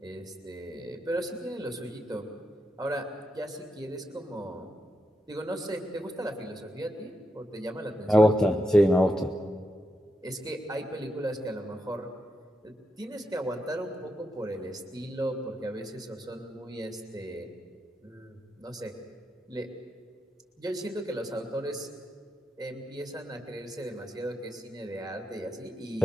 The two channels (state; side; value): normal; both; correlation 0.84